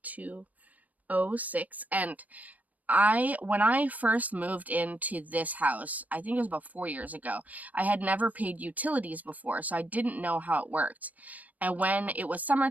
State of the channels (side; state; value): left; late; 0.075 ms